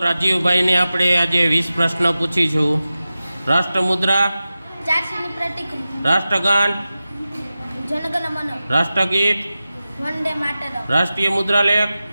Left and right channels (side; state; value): both; inverted; correlation -0.95